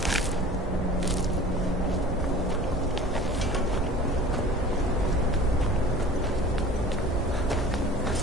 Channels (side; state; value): both; normal; correlation 0.42